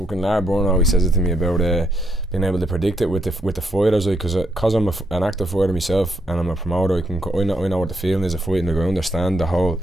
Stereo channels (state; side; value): normal; both; correlation 0.76